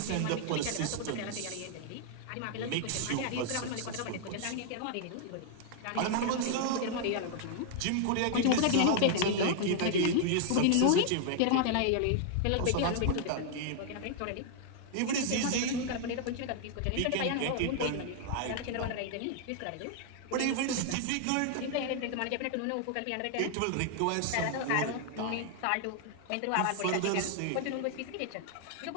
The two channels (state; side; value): different; both; correlation 0.00